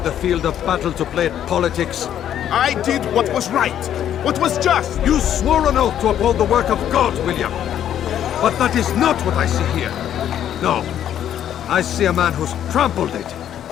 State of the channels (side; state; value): right; quieter; 10.4 dB